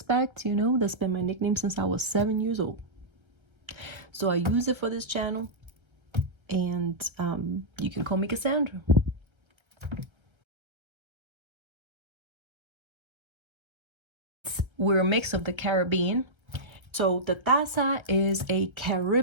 you know, that's been my nickname since I was 7 years old. So I use it for this channel. And you can call me Cassandra. We're a mix of the Caribbean. So the taza is a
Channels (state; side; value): late; left; 1.3 ms